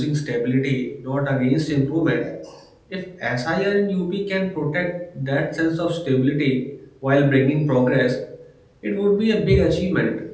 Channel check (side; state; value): both; identical; correlation 1.00